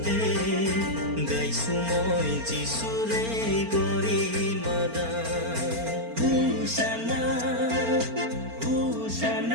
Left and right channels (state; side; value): late; left; 4.4 ms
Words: গাইছো মই যিচুৰে গৰিমা গান হোচানা